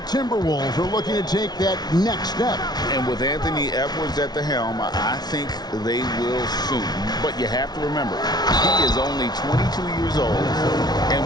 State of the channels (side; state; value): right; late; 0.19 ms